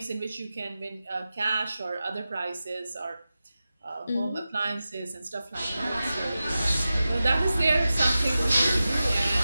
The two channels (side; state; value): both; inverted; correlation -0.93